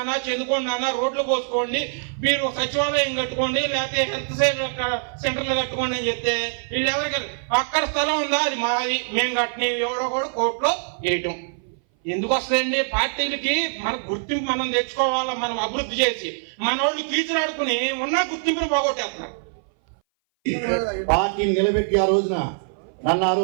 చెందుకోండి నాన్న, రోడ్లు పోసుకోండి, మీరు సచివాలయం కట్టుకోండి, లేకపోతే హెల్త్ సెంటర్లు కట్టుకోండి అని చెప్తే వీళ్ళు ఎవరికి అక్కడ స్థలం ఉందా, అది మాది, మేము కట్టిన ఎవరో కూడా కోర్టులో వేయటం. ఎందుకు వస్తాయండి? పార్టీలకి మన గుర్తింపు మనం తెచ్చుకోవాలా, మనం అభివృద్ధి చేసి మన వాళ్ళు కీచులాడుకుని ఉన్న గుర్తింపుని పోగొట్టేస్తున్నారు. పార్టీని నిలబెట్టి ఆ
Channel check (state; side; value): silent; left; 58 dB below the other